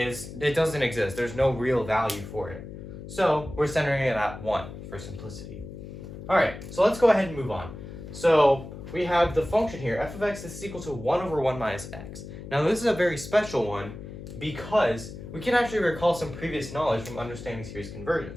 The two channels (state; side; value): noise; left; hum, 12 dB below the sound